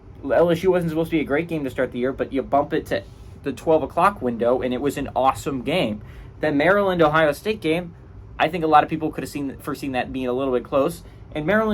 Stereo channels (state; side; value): identical; both; correlation 1.00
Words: LSU wasn't supposed to be a great game to start the year, but you bump it to the 12 o'clock window, and it was an awesome game. The Maryland-Ohio State game, I think a lot of people could have foreseen that being a little bit close, and